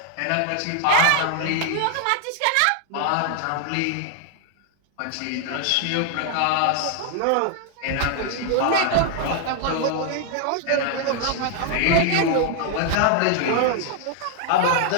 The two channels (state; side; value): different; both; correlation 0.00